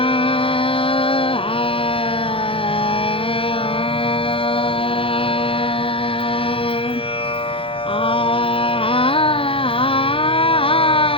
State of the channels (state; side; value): late; right; 0.26 ms